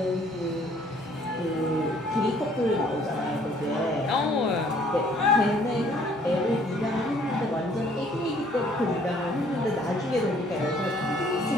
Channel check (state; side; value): normal; both; correlation 0.60